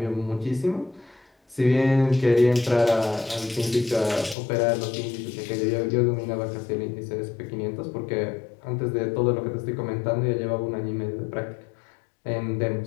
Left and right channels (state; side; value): drops out; right; at 4.4 s